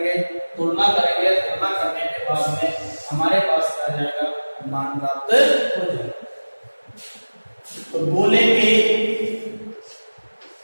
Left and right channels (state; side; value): inverted; both; correlation -1.00